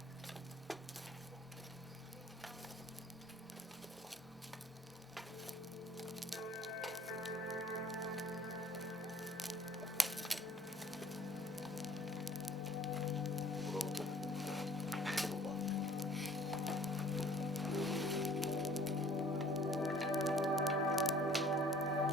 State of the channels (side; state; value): both; normal; correlation 0.54